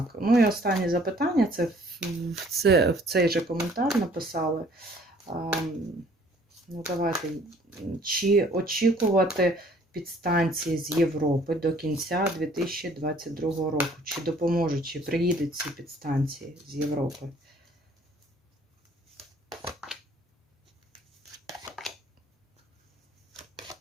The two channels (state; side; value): normal; both; correlation 0.58